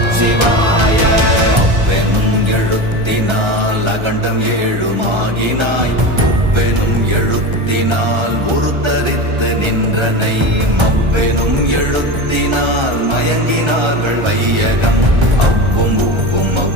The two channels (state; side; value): late; left; 1.3 ms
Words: அவ்வெனும் எழுத்தினால் அகண்டம் ஏழுமாகினாய், உவ்வெனும் எழுத்தினால் உருத்தரித்து நின்றனை, மவ்வெனும் எழுத்தினால் மயங்கினார்கள் வையகம். அவ்வும் உவ்வும்